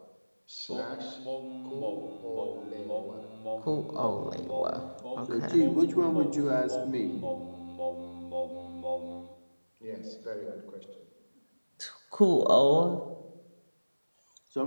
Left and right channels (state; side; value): inverted; both; correlation -1.00